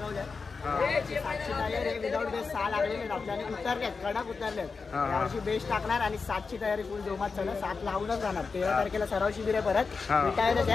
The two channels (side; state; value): right; quieter; 4.7 dB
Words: 7ची तयारी विदाउट बेस 6 लागलेले आपल्याला उतरलेत, कडक उतरलेत. यावर्षी बेस टाकणार आणि 7ची तयारी फुल जोमात चालू. 7 लावूनच राहणार. 13 तारखेला सराव शिबिर आहे परत रिटायरच